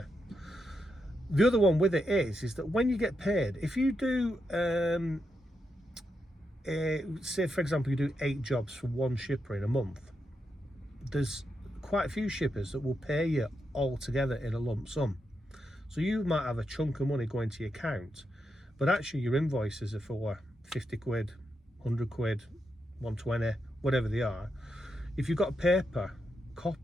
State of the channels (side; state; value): both; normal; correlation 0.84